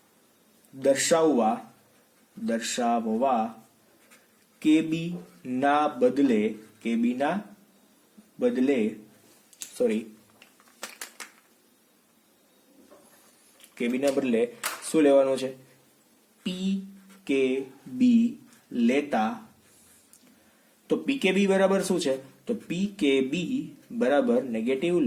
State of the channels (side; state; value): both; identical; correlation 1.00